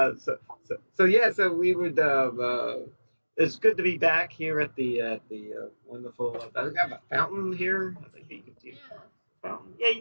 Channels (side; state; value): both; inverted; correlation -1.00